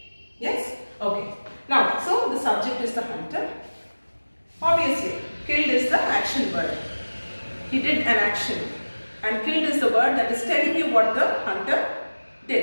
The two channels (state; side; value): inverted; both; correlation -1.00